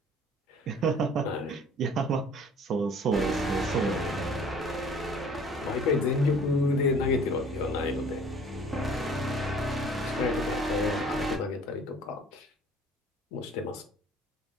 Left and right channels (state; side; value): normal; both; correlation 0.51